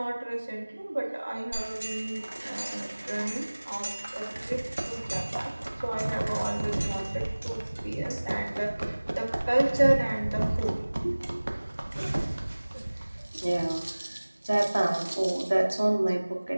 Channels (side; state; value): both; inverted; correlation -1.00